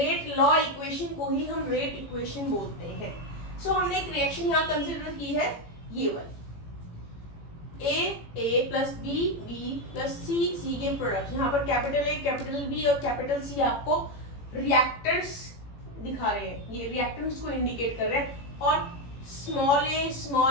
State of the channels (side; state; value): right; late; 18 ms